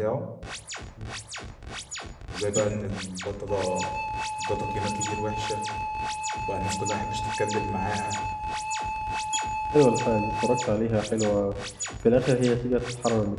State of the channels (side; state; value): both; identical; correlation 1.00